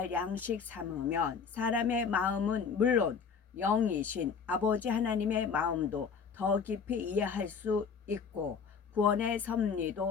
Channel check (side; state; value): right; quieter; 6.1 dB